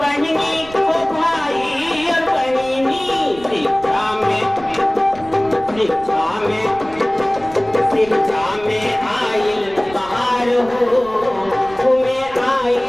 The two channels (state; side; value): noise; right; rumble, 19 dB below the sound